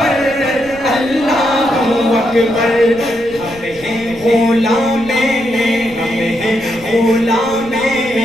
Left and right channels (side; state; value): left; noise; rumble, 21 dB below the sound